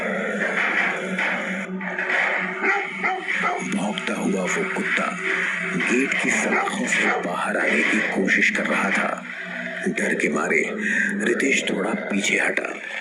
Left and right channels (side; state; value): both; identical; correlation 1.00